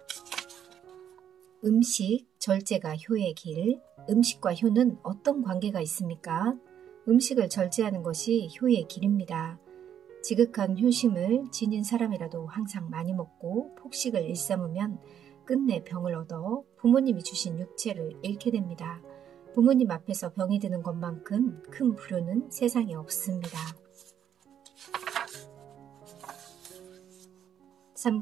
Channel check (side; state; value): left; quieter; 9.4 dB